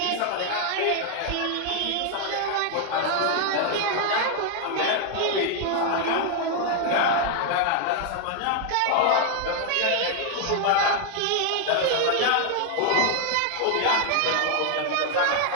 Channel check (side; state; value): both; different; correlation 0.00